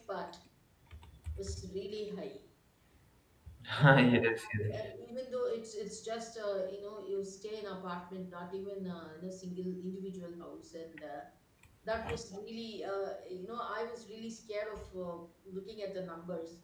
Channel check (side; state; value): both; identical; correlation 1.00